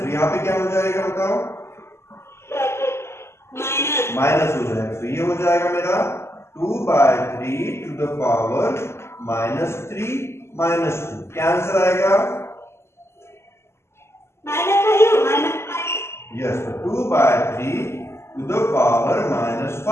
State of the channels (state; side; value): late; right; 0.13 ms